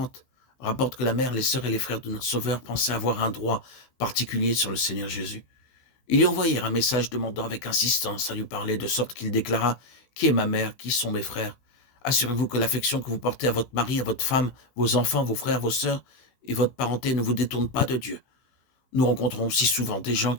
rapporte que la mère, les sœurs et les frères de notre Sauveur pensaient avoir un droit particulier sur le Seigneur Jésus. Ils lui envoyèrent un message demandant avec insistance à lui parler, de sorte qu'il déclara « Qui est ma mère? Qui sont mes frères ?» Assurez-vous que l'affection que vous portez à votre mari, à votre femme, vos enfants, vos frères, vos sœurs et votre parenté ne vous détourne pas de Dieu. Nous rencontrons si souvent des gens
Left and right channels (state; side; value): late; right; 16 ms